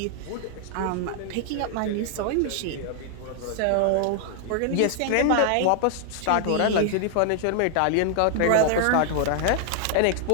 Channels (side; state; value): both; different; correlation 0.00